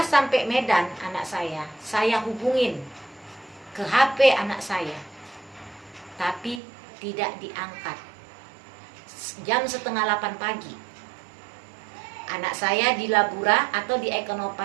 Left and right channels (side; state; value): left; drops out; at 6.6 s